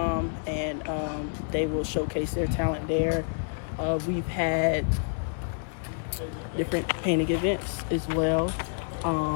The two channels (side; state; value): right; silent; 58 dB below the other